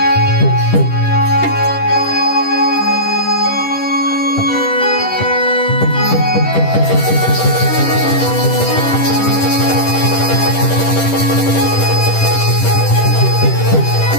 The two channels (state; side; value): late; right; 10 ms